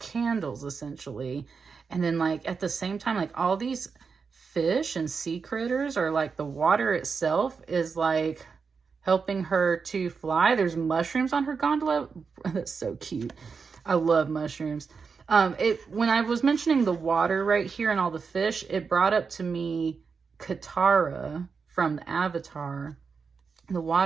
essentially. And then like at the same time, like all these fish and sea critters, or like the water itself is like helping her to fly. There's mushrooms on her gondola. That's so cute. I love mushrooms. When I was mentioning the water right here and all the fish, it brought up to me Katara from the Avatar. the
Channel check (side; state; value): left; quieter; 5.4 dB